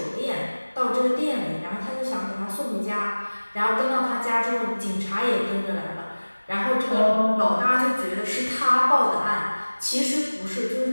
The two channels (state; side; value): inverted; both; correlation -1.00